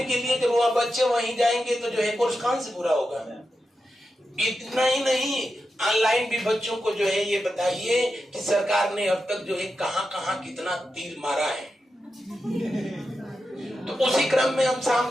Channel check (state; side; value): normal; both; correlation 0.89